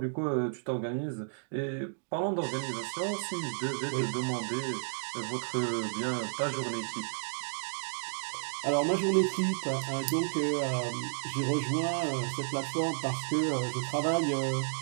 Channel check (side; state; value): left; silent; digital silence